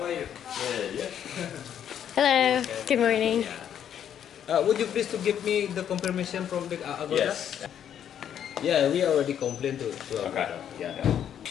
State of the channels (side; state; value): right; quieter; 9.4 dB